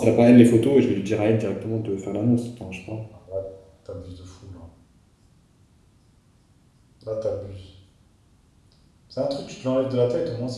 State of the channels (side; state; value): both; identical; correlation 1.00